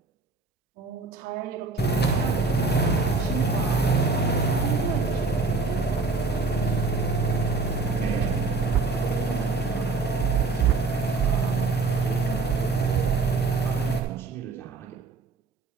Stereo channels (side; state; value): left; quieter; 3.8 dB